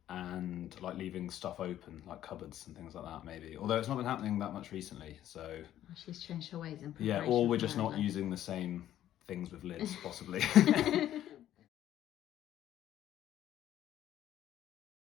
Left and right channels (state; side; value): quieter; right; 12.1 dB